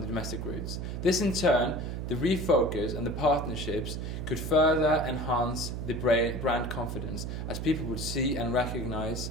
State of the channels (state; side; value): noise; right; hum, 4 dB below the sound